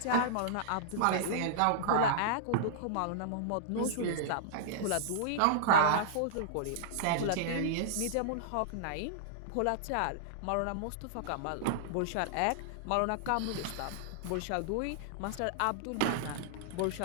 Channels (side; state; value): both; different; correlation -0.01